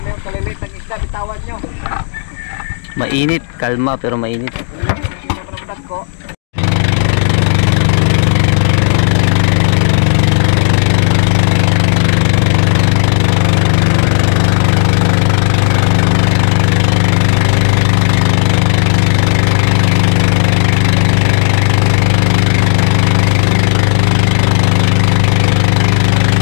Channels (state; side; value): silent; right; 70 dB below the other